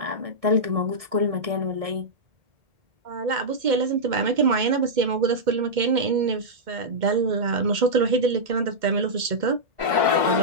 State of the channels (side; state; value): left; late; 2.1 ms